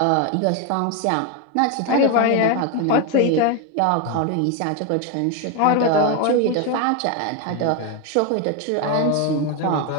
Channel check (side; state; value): both; different; correlation 0.02